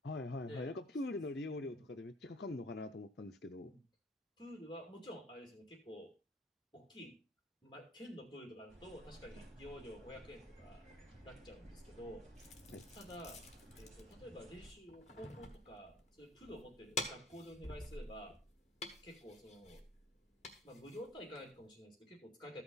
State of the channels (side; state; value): both; normal; correlation 0.52